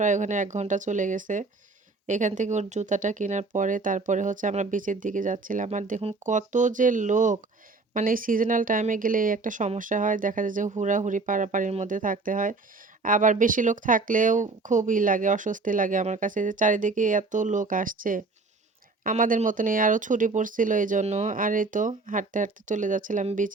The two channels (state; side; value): quieter; left; 3.7 dB